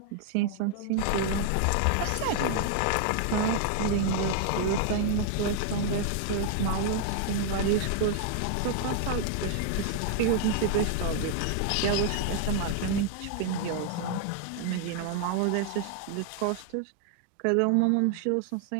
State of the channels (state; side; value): different; both; correlation 0.00